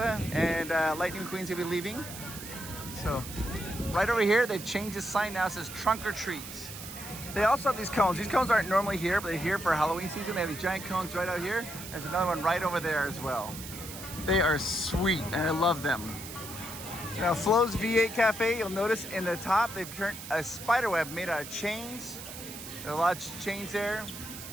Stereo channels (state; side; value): noise; right; hiss, 11 dB below the sound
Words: and Lightning McQueen's gonna be leaving. So, right over here, they've changed the sign now. It says Trunk or Treat. They also have these cones. These cones aren't normally here, but they're here for Halloween season. They have these giant cones right out here. There's another one right over there as well. They are sweet, and I love them. Now, Flo's V8 Cafe, you'll notice in the top, they've turned a spider web made out of chains. There are a lot of chains there.